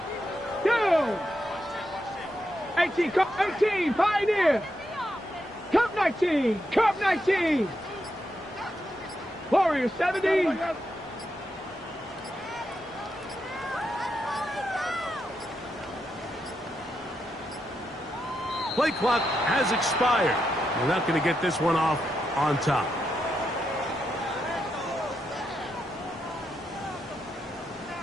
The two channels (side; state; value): both; normal; correlation 0.84